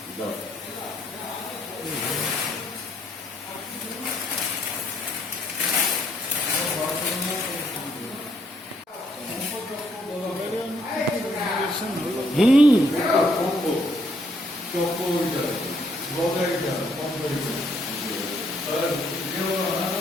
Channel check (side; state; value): both; normal; correlation 0.70